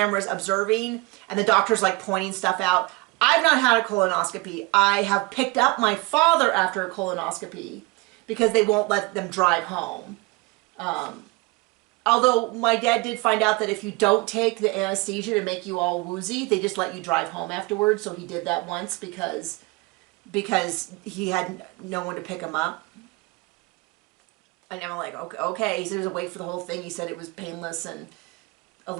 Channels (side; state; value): left; quieter; 24.9 dB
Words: observing, and the doctor's pointing stuff out. I've not had a colonoscopy. I have picked up my father after a colonoscopy because they won't let them drive home. Although my dad did find out that if you don't take the anesthesia to make you all woozy, they just let you drive home afterwards. So he did that once because he had no one to pick him up. And I'm like, okay. He said he was awake for the whole thing. He said it was painless and a